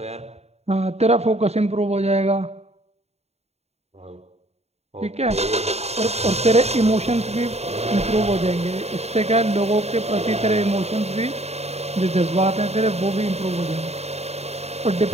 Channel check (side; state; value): left; late; 0.31 ms